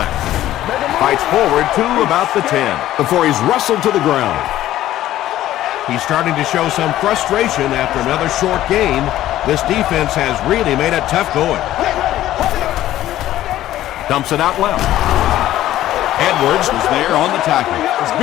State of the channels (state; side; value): quieter; right; 13.7 dB